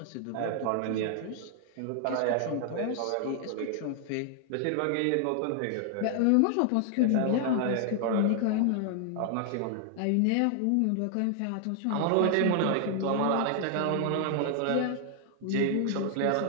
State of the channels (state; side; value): different; both; correlation 0.00